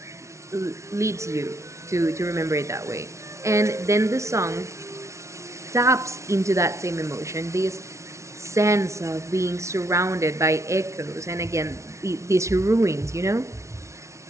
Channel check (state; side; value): late; left; 0.14 ms